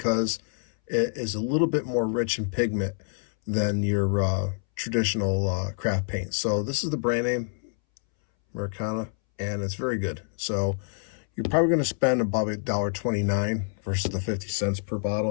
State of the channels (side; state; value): right; silent; 60 dB below the other